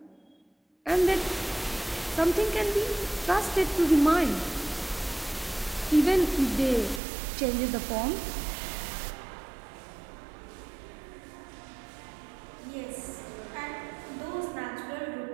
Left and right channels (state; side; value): drops out; left; at 7.0 s